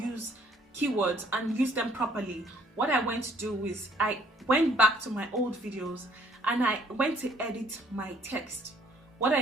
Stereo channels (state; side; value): normal; both; correlation 0.62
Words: keywords and use them properly, what I went to do is I went back to my old videos and I went to edit my text. What